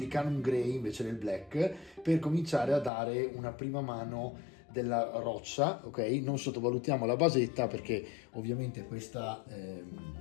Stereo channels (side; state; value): right; drops out; at 2.9 s